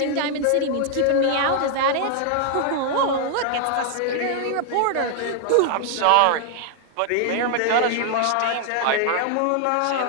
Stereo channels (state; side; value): different; both; correlation 0.00